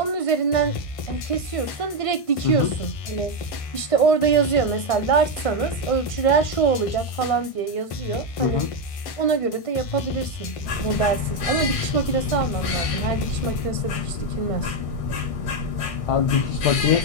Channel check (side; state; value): right; late; 1.5 ms